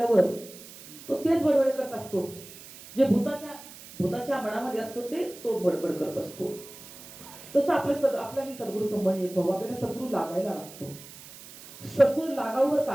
तो तेच बडबड करत असतो, जे भूताच्या मनामध्ये असतो ते तो बडबड करत असतो. तसं आपल्याला सद्गुरूचं मन एक व्हावं, आपल्याला सद्गुरू लागायला लागतो. सद्गुरू लागावर का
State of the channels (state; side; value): noise; right; hiss, 17 dB below the sound